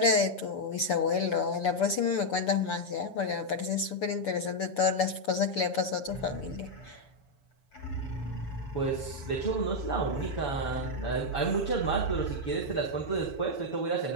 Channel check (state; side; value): late; right; 7.1 ms